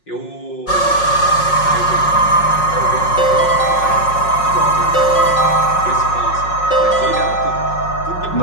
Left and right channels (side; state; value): right; late; 5.5 ms